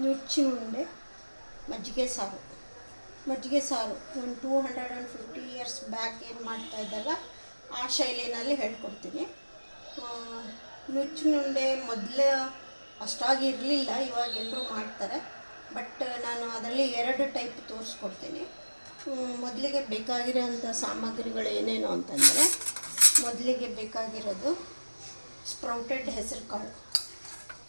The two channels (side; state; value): both; inverted; correlation -1.00